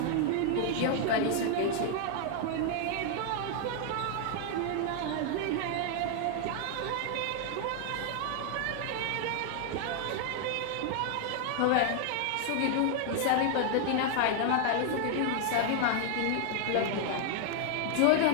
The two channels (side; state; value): both; different; correlation 0.00